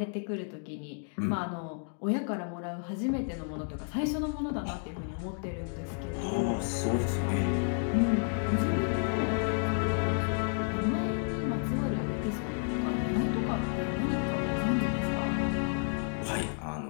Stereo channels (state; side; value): silent; right; 57 dB below the other